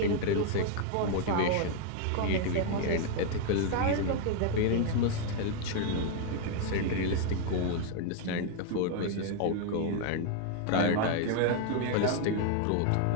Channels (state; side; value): different; both; correlation 0.00